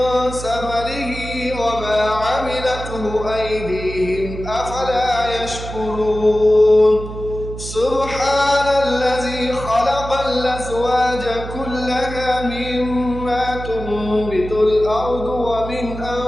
ثمره وما عملته أيديهم أفلا يشكرون سبحان الذي خلق الأزواج كلها مما تنبت الأرض ومن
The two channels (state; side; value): noise; right; hum, 10 dB below the sound